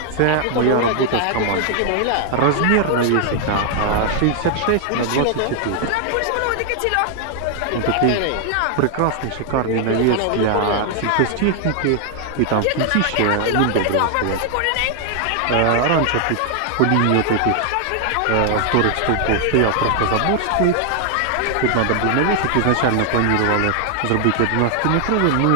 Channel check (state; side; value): different; both; correlation 0.00